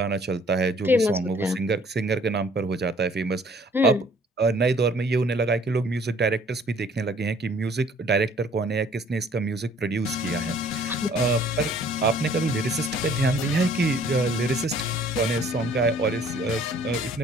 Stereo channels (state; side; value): normal; both; correlation 0.57